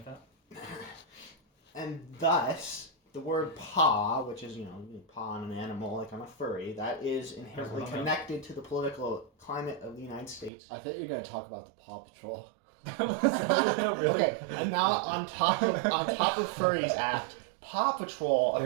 that. And thus, the word paw, which is, you paw on an animal like I'm a furry, that is inherently connected to the political climate of the United States. I thought you were going to talk about the Paw Patrol. Really? Okay, and now on top of Furries Act, Paw Patrol a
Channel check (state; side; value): drops out; left; at 10.5 s